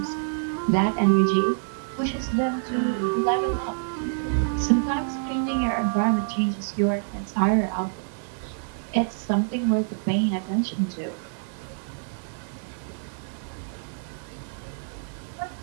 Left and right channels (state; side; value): silent; left; digital silence